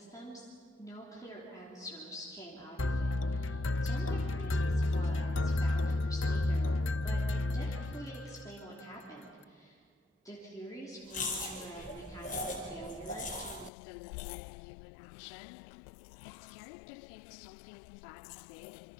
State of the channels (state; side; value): drops out; right; at 13.7 s